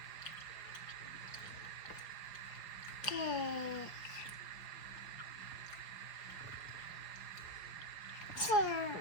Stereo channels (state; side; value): late; right; 4.9 ms